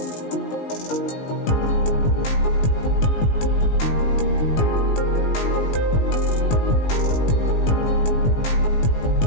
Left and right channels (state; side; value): late; right; 18 ms